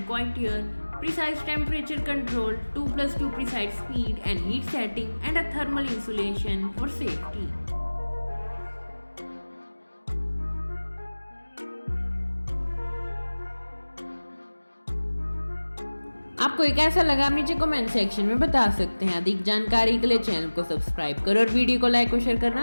quieter, precise temperature control, 2+2 precise speed and heat setting, and a thermal insulation for safety. आपको एक ऐसा लगा, आप नीचे कमेंट सेक्शन में बता सकते हैं। अधिक जानकारी के लिए चैनल को सब्सक्राइब करो और वीडियो को लाइक और शेयर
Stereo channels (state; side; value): inverted; both; correlation -1.00